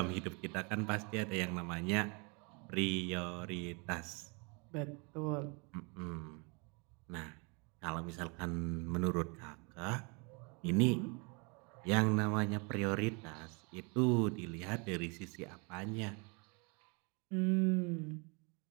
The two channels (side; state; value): left; quieter; 32.0 dB